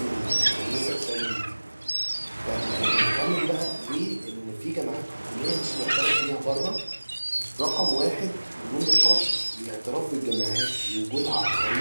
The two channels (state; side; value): inverted; both; correlation -1.00